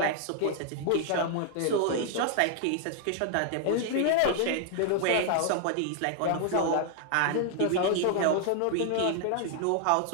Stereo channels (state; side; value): different; both; correlation 0.00